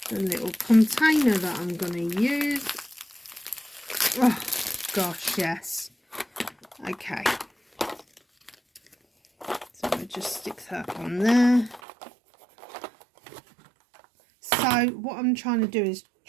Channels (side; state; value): left; drops out; at 11.8 s